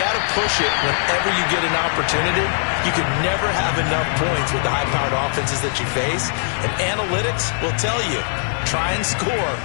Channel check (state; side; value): silent; right; digital silence